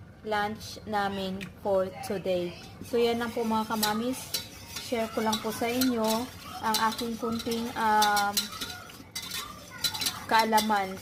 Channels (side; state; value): both; identical; correlation 1.00